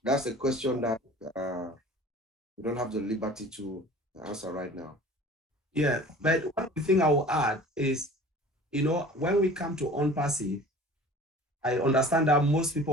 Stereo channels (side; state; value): both; normal; correlation 0.44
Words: That's a question that we don't have the liberty to answer right now. Yeah, but one thing I will add is, when we come to ONPASSIVE, I understand that most